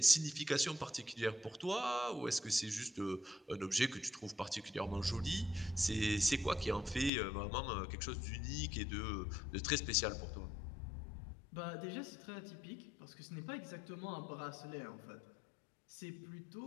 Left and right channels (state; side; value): drops out; right; at 7.1 s